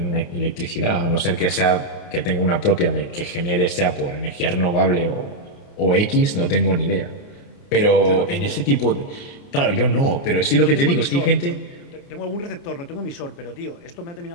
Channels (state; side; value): late; right; 29 ms